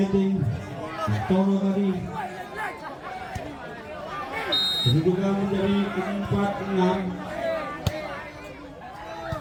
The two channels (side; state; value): both; identical; correlation 1.00